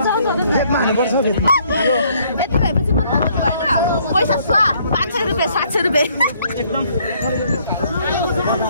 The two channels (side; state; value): both; inverted; correlation -0.65